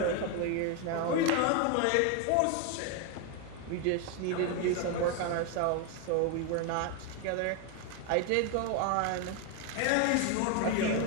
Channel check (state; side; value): different; both; correlation 0.01